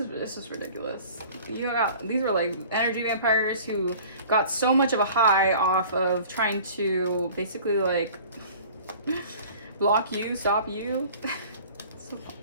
just ridiculous. These were like energy vampires who got so much of a high off of trying to basically like block you, stop you. So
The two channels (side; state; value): both; inverted; correlation -0.46